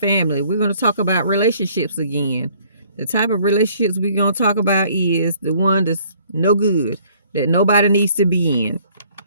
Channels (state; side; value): inverted; both; correlation -0.59